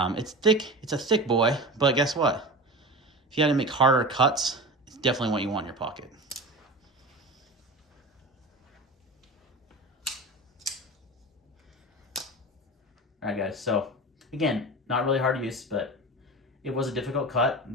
thick, it's a thick boy, but guess what? If you had to make harder cuts, it's definitely what you want in your pocket. All right, guys. So again, not really hard to use, but it was a difficult cut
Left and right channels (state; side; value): normal; both; correlation 0.30